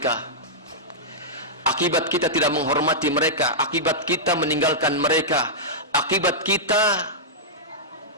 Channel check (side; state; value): both; normal; correlation -0.11